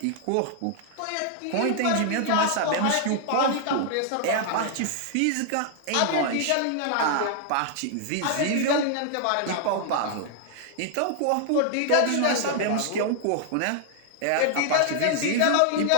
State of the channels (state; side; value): different; both; correlation 0.00